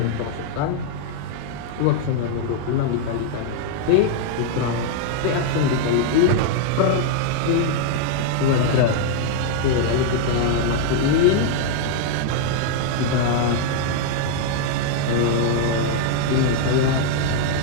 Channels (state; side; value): different; both; correlation -0.01